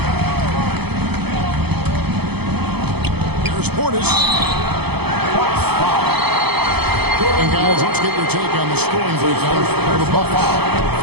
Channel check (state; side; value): late; left; 0.97 ms